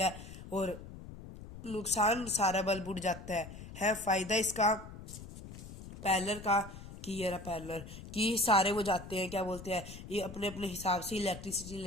और नुकसान सारा बल्ब उड़ जाता है। फायदा इसका पैरेलल का कि ये रहा पैरेलल, कि सारे वो जाते हैं क्या बोलते हैं, ये अपने अपने हिसाब से इलेक्ट्रिसिटी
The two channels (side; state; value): left; noise; rumble, 13 dB below the sound